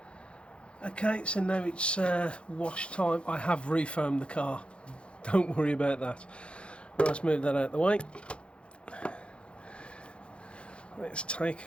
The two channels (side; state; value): right; late; 0.058 ms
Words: Okay, so now it's wash time. I have refoamed the car. Don't worry about that. Right, let's move that out of the way. Let's take